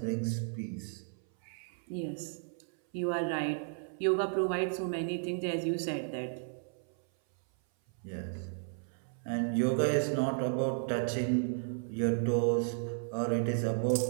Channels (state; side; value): silent; left; 55 dB below the other